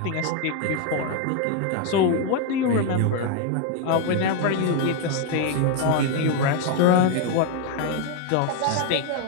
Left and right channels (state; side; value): different; both; correlation 0.01